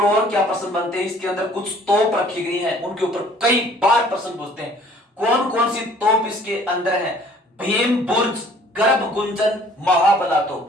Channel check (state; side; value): normal; both; correlation 0.55